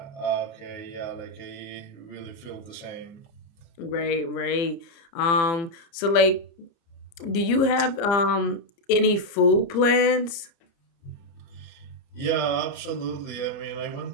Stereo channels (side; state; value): right; late; 30 ms